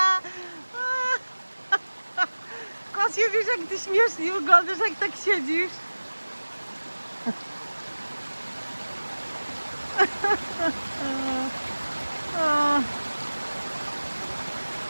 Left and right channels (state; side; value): inverted; both; correlation -1.00